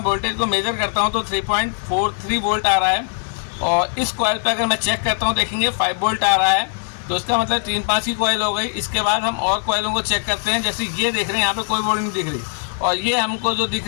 वोल्टेज को मेजर करता हूँ तो 3.43 वोल्ट आ रहा है और इस कॉइल पे अगर मैं चेक करता हूँ देखेंगे 5 वोल्ट आ रहा है। तो इसका मतलब 3-5 की कॉइल हो गई। इसके बाद हम और कॉइलों को चेक करते हैं। जैसे ये देख रहे हैं यहाँ पे कोई वोल्ट नहीं दिख रही और ये हमको जो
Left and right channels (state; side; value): silent; right; 65 dB below the other